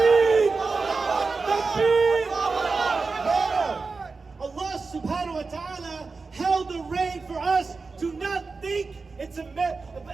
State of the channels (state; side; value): quieter; left; 4.2 dB